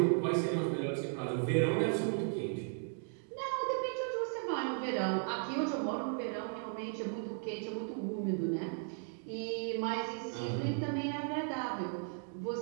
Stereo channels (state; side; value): silent; left; 54 dB below the other